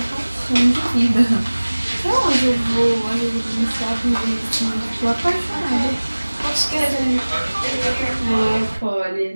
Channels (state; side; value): inverted; both; correlation -1.00